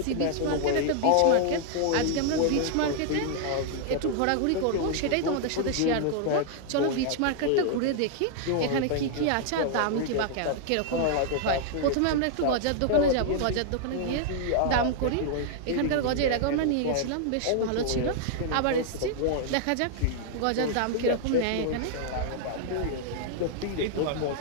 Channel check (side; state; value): both; different; correlation -0.01